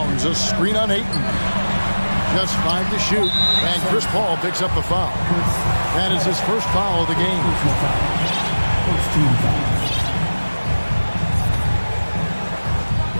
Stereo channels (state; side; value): inverted; both; correlation -1.00